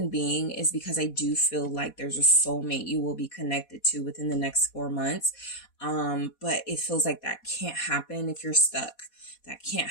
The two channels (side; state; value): right; late; 4.1 ms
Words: being is because I do feel like there's a soulmate you will be connected to within the next 4 months. But it feels like that can't happen if you're stuck. That